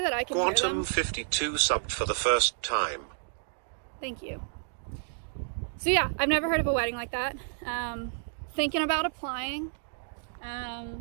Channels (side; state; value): left; silent; digital silence